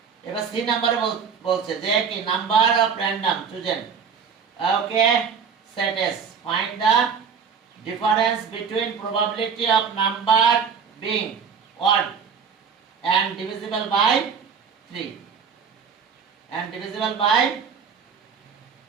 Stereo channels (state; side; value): quieter; left; 6.4 dB